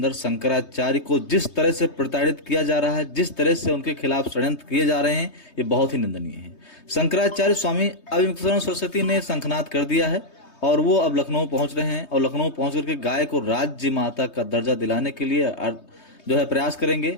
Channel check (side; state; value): right; late; 3.2 ms